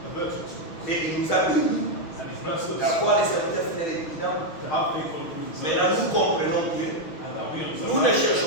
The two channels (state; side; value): late; right; 6.2 ms